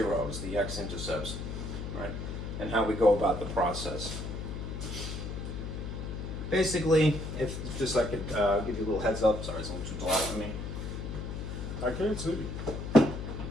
the x-intercepts, right? And how we go about the process. Basically, if just I could give you a little heads up. Sorry, it's a little too dark for me. I can't see.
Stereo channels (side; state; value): left; noise; hum, 6 dB below the sound